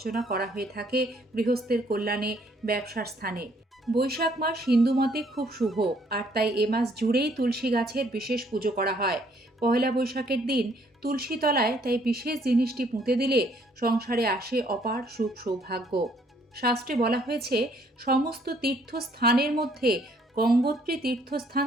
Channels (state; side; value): normal; both; correlation 0.65